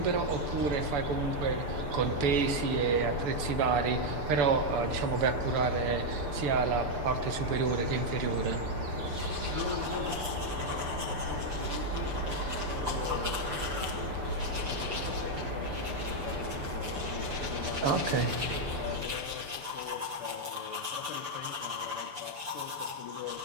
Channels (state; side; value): late; left; 6.9 ms